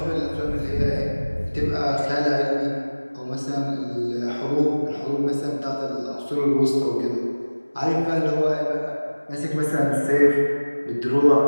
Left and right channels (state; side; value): inverted; both; correlation -1.00